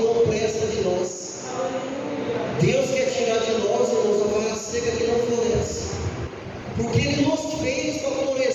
presta de nós. Deus quer tirar de nós, irmãos, a vara seca que não floresce. Porque Ele nos fez para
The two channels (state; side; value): identical; both; correlation 1.00